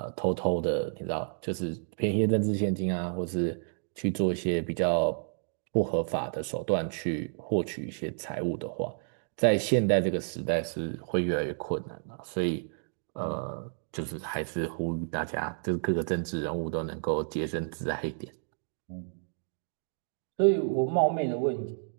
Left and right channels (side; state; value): left; silent; digital silence